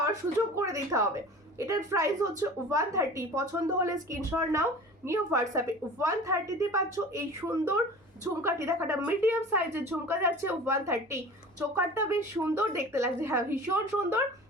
সুযোগ করে দিতে হবে। এটার প্রাইস হচ্ছে 130। পছন্দ হলে স্ক্রিনশট নাও, নিয়ে হোয়াটসঅ্যাপে। 130-তে পাচ্ছ এই সুন্দর ঝুমকাটি। দেখো একটা মিডিয়াম সাইজের ঝুমকা যাচ্ছে 130। চোকারটা বেশ সুন্দর দেখতে লাগছে, হ্যাঁ ভীষণ সুন্দর,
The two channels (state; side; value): normal; both; correlation 0.39